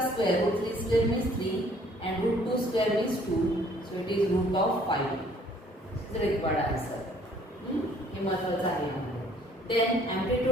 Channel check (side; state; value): both; normal; correlation 0.59